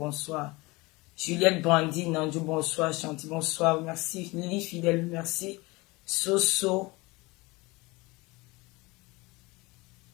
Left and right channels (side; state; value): right; quieter; 23.5 dB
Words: Juliette Brandine, Nandou, bonsoir. Chanty, bonsoir. Merci. Lily Fidèle, merci. Soso.